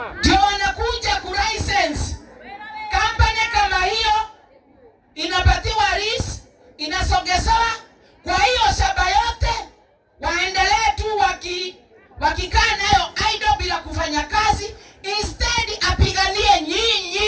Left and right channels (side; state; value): both; identical; correlation 1.00